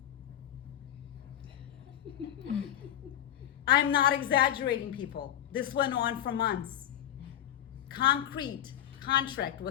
I'm not exaggerating, people. This went on for months. Concrete contract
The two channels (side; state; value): right; quieter; 11.2 dB